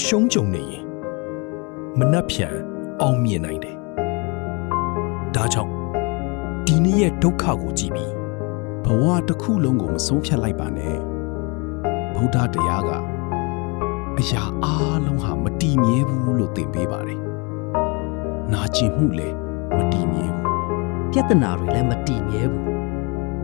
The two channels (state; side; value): quieter; right; 30.5 dB